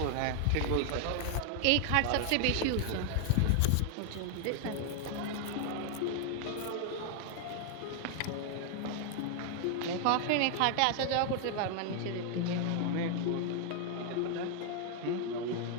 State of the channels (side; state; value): both; different; correlation 0.00